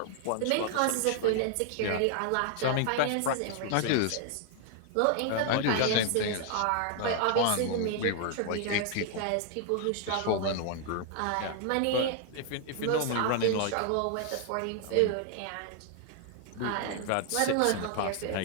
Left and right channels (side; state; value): both; different; correlation 0.00